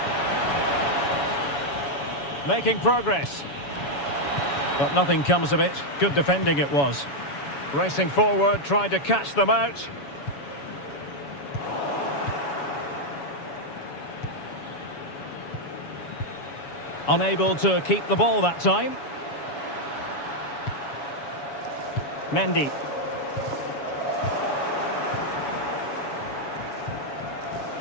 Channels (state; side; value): late; right; 7.1 ms